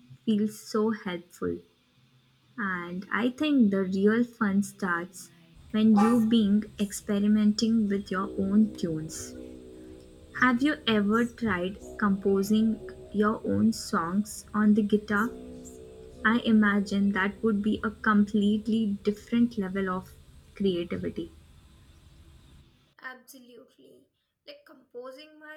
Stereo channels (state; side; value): identical; both; correlation 1.00